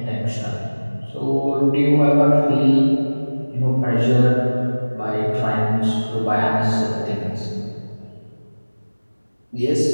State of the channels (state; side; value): inverted; both; correlation -1.00